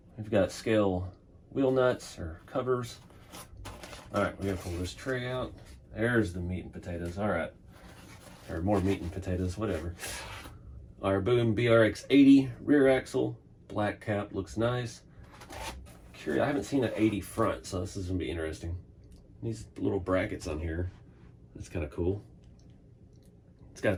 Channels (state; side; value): identical; both; correlation 1.00